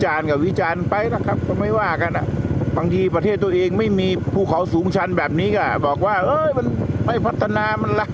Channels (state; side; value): identical; both; correlation 1.00